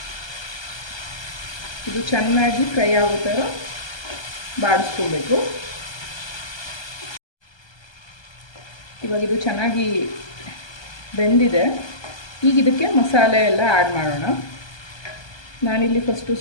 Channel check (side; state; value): right; late; 1.2 ms